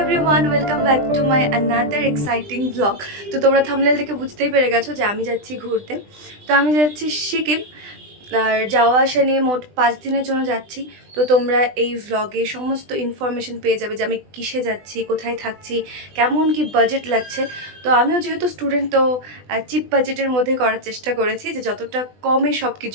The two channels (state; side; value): late; left; 20 ms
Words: welcome back to my another exciting blog. তো তোমরা thumbnail থেকে বুঝতেই পেরে গেছো যে আমি যাচ্ছি ঘুরতে। তো আমি যাচ্ছি সিকিম, আর যাওয়া আসা নিয়ে মোট 5 দিনের জন্য যাচ্ছি। তো তোমরা এই ভ্লগে সমস্ত ইনফরমেশন পেয়ে যাবে যে আমি কিসে যাচ্ছি, কোথায় থাকছি, কেমন কি বাজেট লাগছে। তো আমিও যেহেতু স্টুডেন্ট, তো চিপ বাজেটের মধ্যে করার চেষ্টা করেছি যে যতটা কমে সব